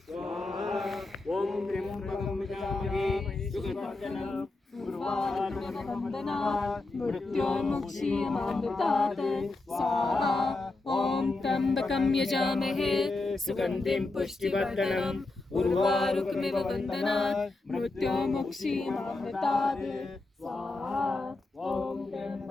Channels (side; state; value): right; quieter; 3.2 dB